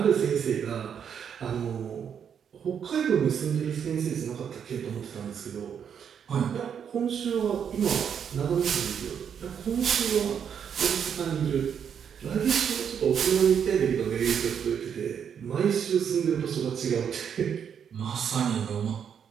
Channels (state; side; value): quieter; left; 7.8 dB